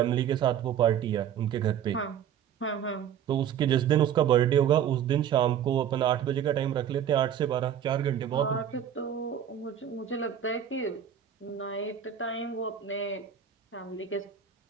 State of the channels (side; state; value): left; quieter; 9.1 dB